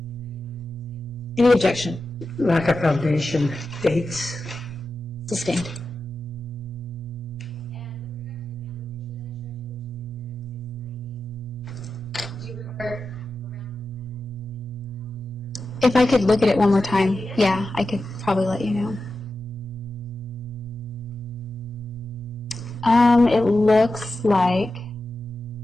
Any objection? Lack of foundation, dates. Sustained. Do you remember? If I could look at it one more time, yeah, I could probably let you know. It looks like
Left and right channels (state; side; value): normal; both; correlation 0.91